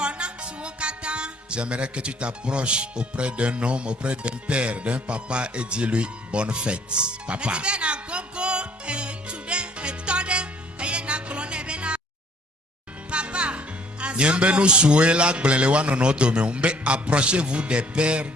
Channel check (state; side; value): normal; both; correlation 0.59